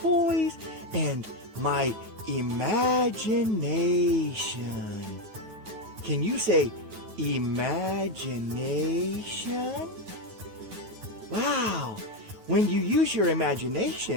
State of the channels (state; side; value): late; left; 9.3 ms